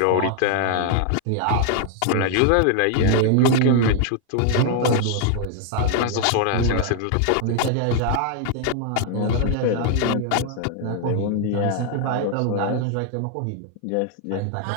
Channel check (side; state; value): both; different; correlation 0.00